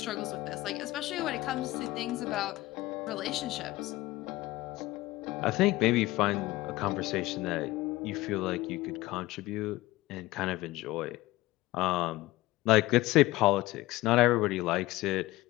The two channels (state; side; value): quieter; right; 18.5 dB